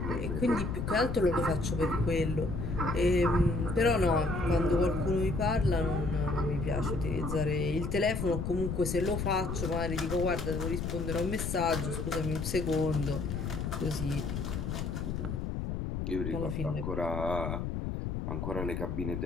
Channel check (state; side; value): noise; left; rumble, 3 dB below the sound